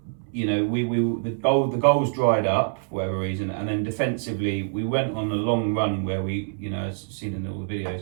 the goals dried up for whatever reason, and then defensively we went on a long run where we, as seen in all the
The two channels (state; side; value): silent; left; 62 dB below the other